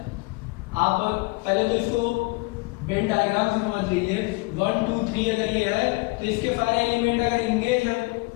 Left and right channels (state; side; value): quieter; right; 25.1 dB